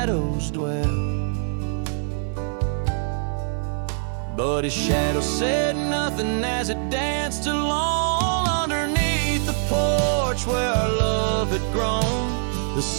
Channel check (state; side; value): silent; left; 63 dB below the other